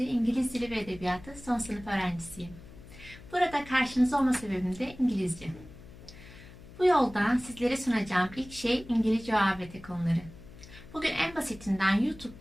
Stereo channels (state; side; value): noise; left; hum, 18 dB below the sound